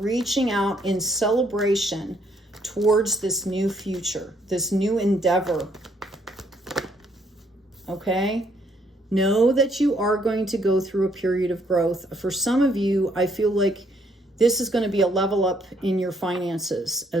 out in celebration towards this new future, this new endeavor. Okay? Know that you are going to go through a period of growth. For some of you, I feel like this is going to be a level up in your finances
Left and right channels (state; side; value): normal; both; correlation 0.69